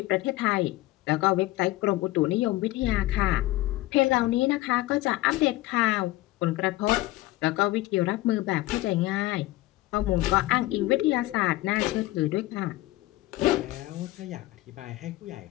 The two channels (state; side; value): quieter; right; 17.9 dB